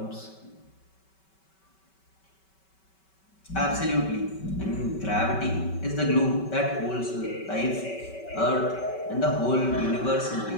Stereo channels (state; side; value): late; right; 5.2 ms